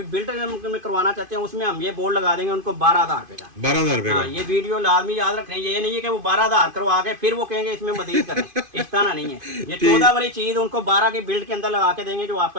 बिल्ड में करवाना चाहते हैं उसमें हम ये बोर्ड लगा देंगे उनको 12,000 रुपए का। 12,000 रुपए हाँ, का। ये वीडियो लाजमी याद रखना है, ये नहीं है कि वो 12,000 करवा के फिर वो कहेंगे इसमें मजीद करें, इस तरह नहीं है। ये 14 वाली चीज उनको 12 की बिल्ड के अंदर लगा के देंगे जो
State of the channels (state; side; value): late; left; 2.5 ms